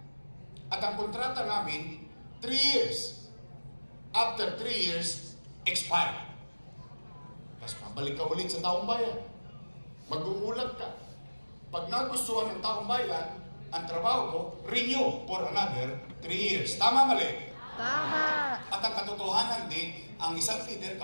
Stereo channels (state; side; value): inverted; both; correlation -1.00